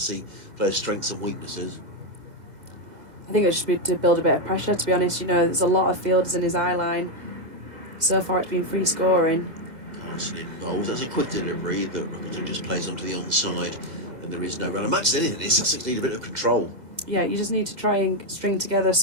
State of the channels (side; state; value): left; late; 1.9 ms